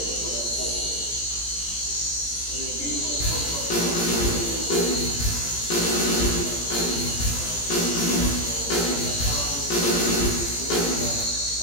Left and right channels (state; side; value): late; right; 17 ms